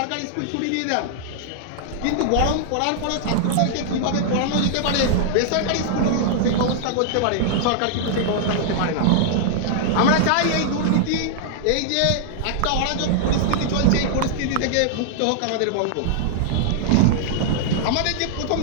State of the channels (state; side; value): different; both; correlation -0.01